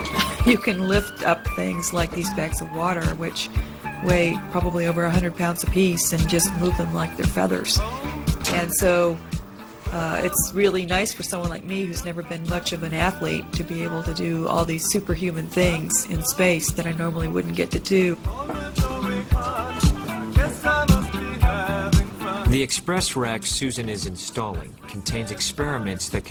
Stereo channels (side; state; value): both; identical; correlation 1.00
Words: You can lift up things like these bags of water, which weigh probably over 100 pounds apiece, and just move them like they're feathers. And so it's really nice for someone like me who's never been much of an athlete to be able to do all these superhuman things in space that I normally wouldn't get to do. The express rack Susan is installing contains experiments that